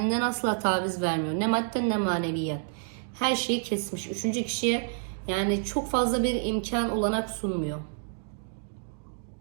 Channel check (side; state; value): left; silent; digital silence